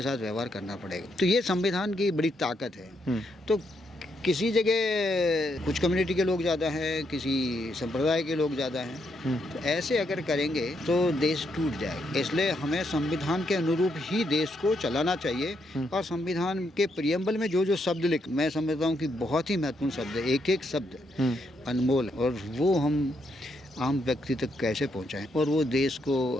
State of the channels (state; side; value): normal; both; correlation 0.78